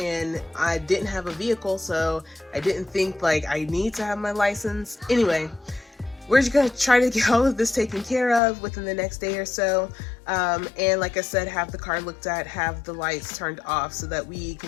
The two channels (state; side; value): drops out; right; at 8.4 s